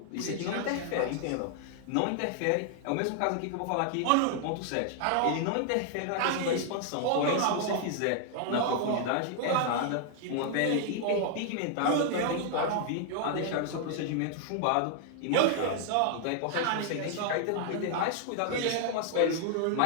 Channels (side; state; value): both; different; correlation 0.00